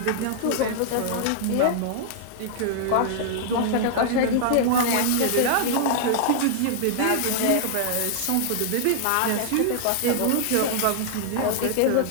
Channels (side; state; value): both; different; correlation -0.01